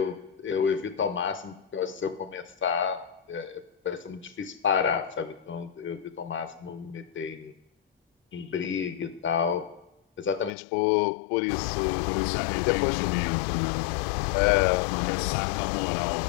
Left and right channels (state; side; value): drops out; right; at 10.5 s